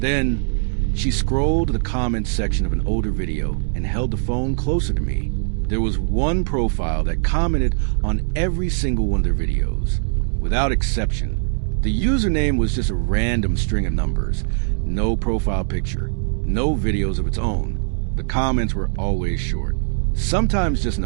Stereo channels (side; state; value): left; silent; digital silence